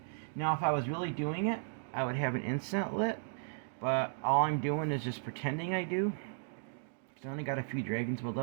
Now if I was really doing it, I would have an incense lit, but all I'm doing is just pretending I do. I only got a few dragon's blood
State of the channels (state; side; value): silent; left; digital silence